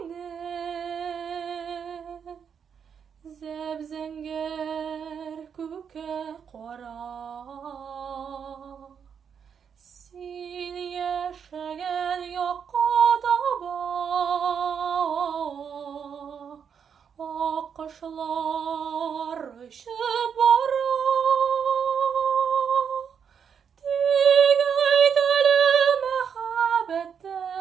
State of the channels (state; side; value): quieter; left; 7.2 dB